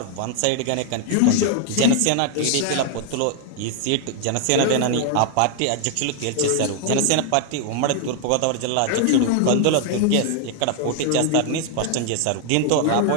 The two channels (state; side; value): different; both; correlation 0.00